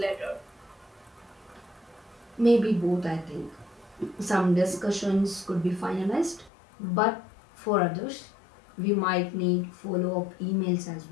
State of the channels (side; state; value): right; drops out; at 6.5 s